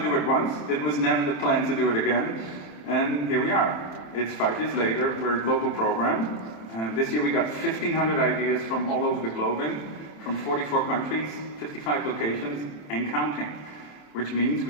it once. It was never the plan to do it again, and here we are. It's 5 years later, we're a global program. This year we got 1,500 ideas from all over the globe from 44 countries, 55 locations, and counting. Which means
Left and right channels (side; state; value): right; late; 27 ms